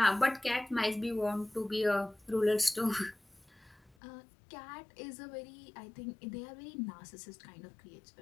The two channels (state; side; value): drops out; right; at 4.0 s